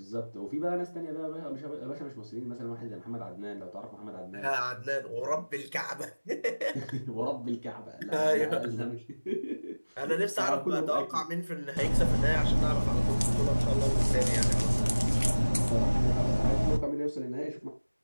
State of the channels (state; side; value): inverted; both; correlation -1.00